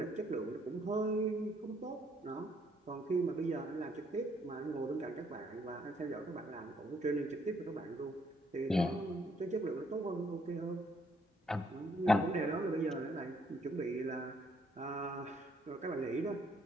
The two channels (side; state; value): both; normal; correlation 0.68